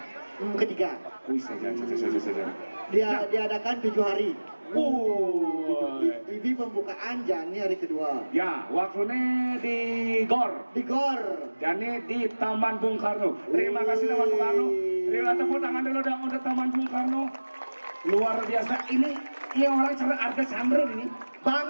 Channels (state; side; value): inverted; both; correlation -1.00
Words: Ketiga. Saja. Dia diadakan 7 hari. Ini pembukaan Jani hari kedua. Ya, waktunya di GOR. Jani di Taman Bung Karno. Terima kasih Taman Bung Karno. Terima tepuk tangan dulu dong untuk Taman Bung Karno. Luar biasa ini orang cara harga sandro ini.